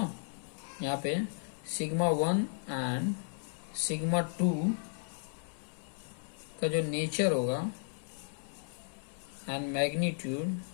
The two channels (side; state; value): right; silent; 55 dB below the other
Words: यहाँ पे सिग्मा 1 एंड सिग्मा 2 का जो नेचर होगा एंड मैग्नीट्यूड